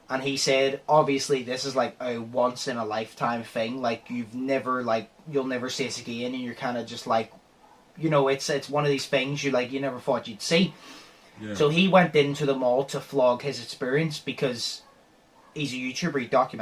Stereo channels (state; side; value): identical; both; correlation 1.00